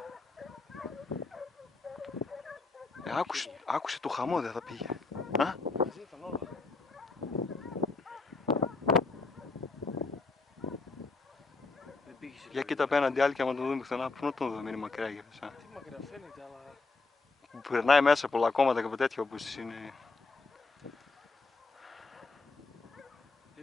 Άκουσε το χαμό, δεν θα πήγε. Α? μαζί ήταν όλα. Δεν πήγε σε Για κοίτα απέναντι άλλη και άμα τον δούμε πουθενά, πού να τον δούμε, είναι μακριά για εσά. Τι μακριά φαίνεται, αλλά... Που περνάει μέσα πολλά κόμματα και από τέτοια όπως είναι.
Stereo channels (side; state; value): right; quieter; 3.8 dB